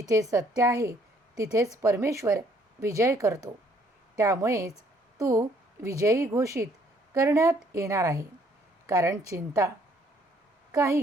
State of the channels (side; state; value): both; normal; correlation 0.64